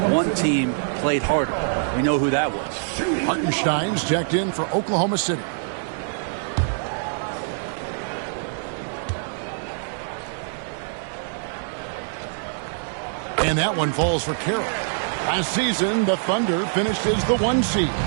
one team played harder. We know who that was. Hartenstein's checked in for Oklahoma City. And that one falls for Carroll. Last season, the Thunder finished as the 1 seed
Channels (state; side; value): silent; left; digital silence